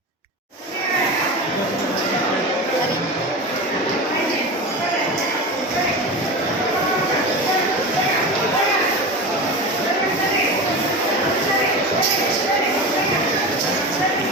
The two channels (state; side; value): normal; both; correlation 0.27